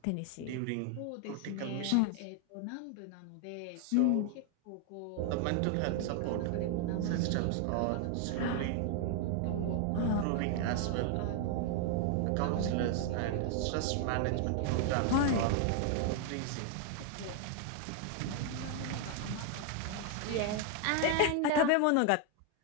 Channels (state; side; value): different; both; correlation 0.00